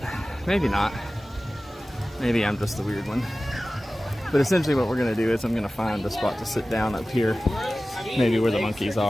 maybe not. Maybe I'm just the weird one. But essentially what we're gonna do is I'm gonna find a spot to sit down up here, maybe where the monkeys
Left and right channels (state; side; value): normal; both; correlation 0.96